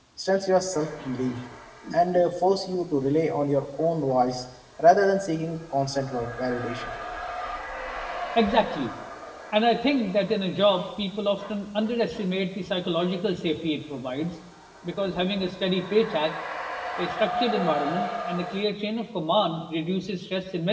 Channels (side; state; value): both; identical; correlation 1.00